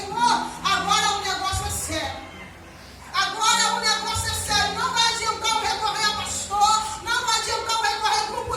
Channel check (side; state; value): both; identical; correlation 1.00